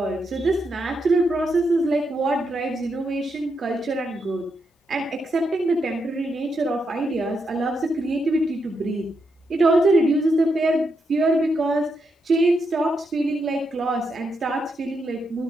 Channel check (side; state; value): both; normal; correlation 0.82